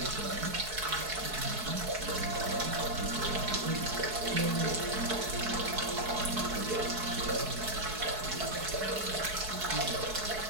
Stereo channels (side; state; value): left; late; 4.7 ms